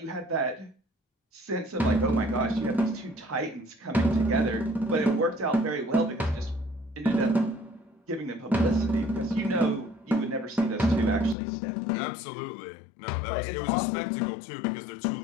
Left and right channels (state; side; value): drops out; right; at 11.4 s